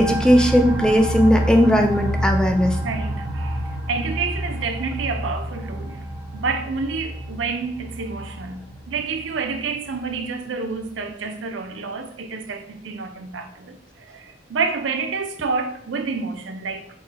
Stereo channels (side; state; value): both; normal; correlation 0.68